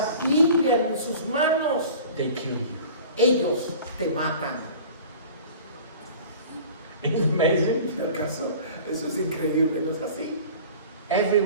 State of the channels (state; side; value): inverted; both; correlation -0.43